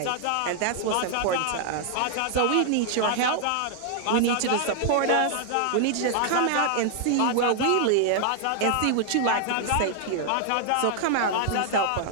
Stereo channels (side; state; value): both; different; correlation 0.00